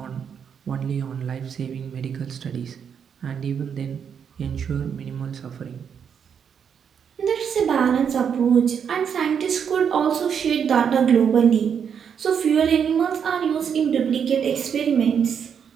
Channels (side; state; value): left; quieter; 7.5 dB